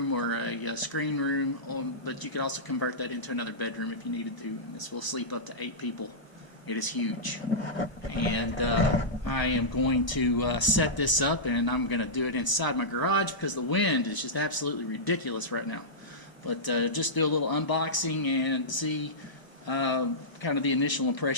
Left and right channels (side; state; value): right; late; 1.0 ms